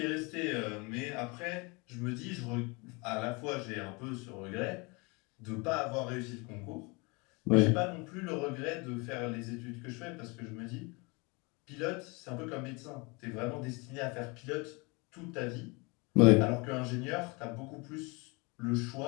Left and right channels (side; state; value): right; quieter; 28.4 dB